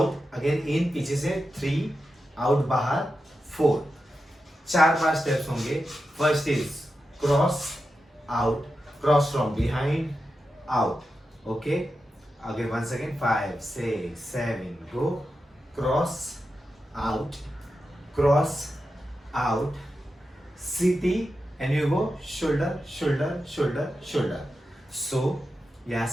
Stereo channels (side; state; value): both; normal; correlation 0.90